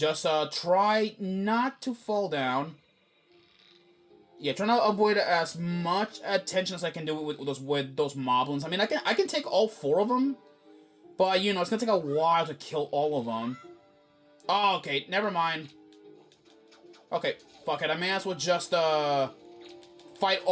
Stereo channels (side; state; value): both; identical; correlation 1.00